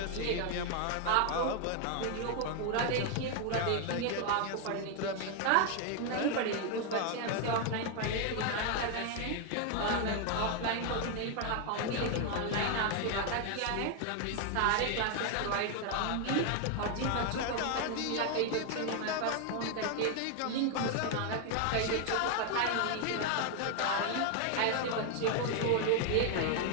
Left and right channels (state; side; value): different; both; correlation 0.01